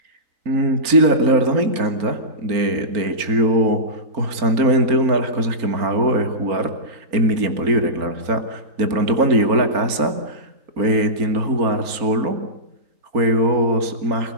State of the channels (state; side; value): late; left; 4.3 ms